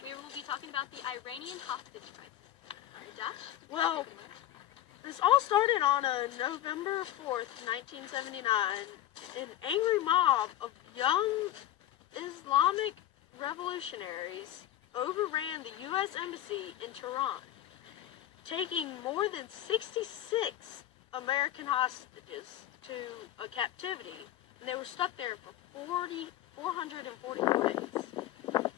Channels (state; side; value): quieter; right; 12.9 dB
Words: you. We will be talking about the Iranian hostage crisis. All right, Josh? Well, this all started on November 4th, 1979. An angry mob of young Islamic revolutionaries overran the U.S. Embassy in Tehran, taking more than 66 American hostages to a captivity, and they were stuck there for 444 days.